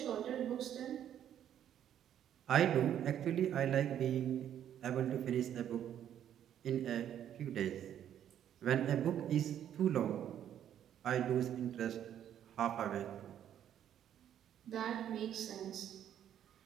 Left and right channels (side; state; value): left; quieter; 10.2 dB